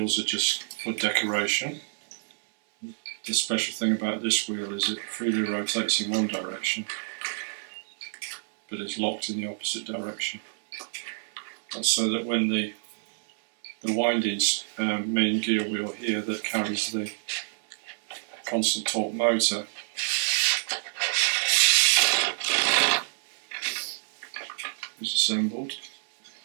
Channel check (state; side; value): silent; left; 60 dB below the other